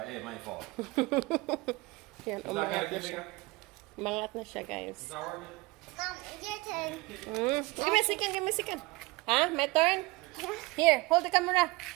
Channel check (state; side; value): quieter; left; 22.7 dB